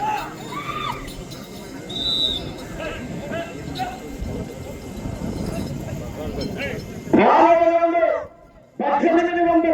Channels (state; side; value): identical; both; correlation 1.00